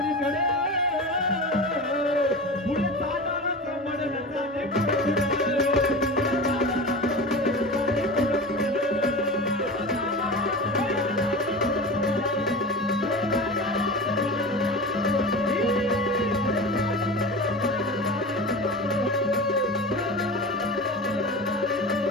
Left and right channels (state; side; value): normal; both; correlation 0.30